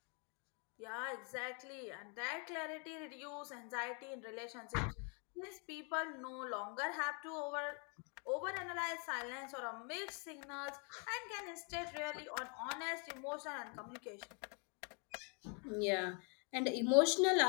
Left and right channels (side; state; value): right; quieter; 37.0 dB